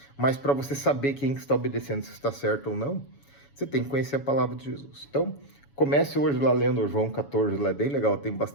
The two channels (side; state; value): right; late; 7.1 ms